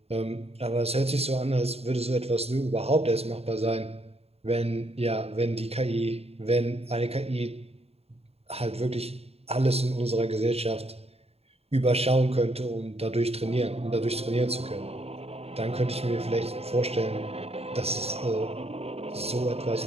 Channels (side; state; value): left; late; 0.29 ms